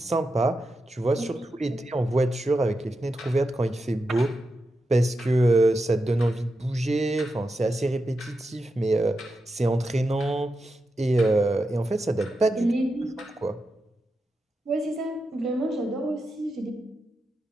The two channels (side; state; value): both; normal; correlation 0.88